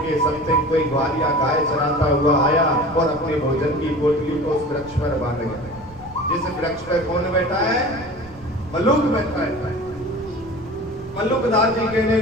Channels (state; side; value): noise; right; rumble, 21 dB below the sound